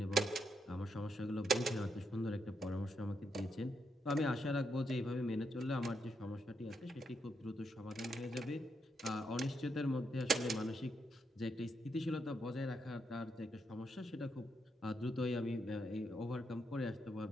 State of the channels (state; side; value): normal; both; correlation 0.80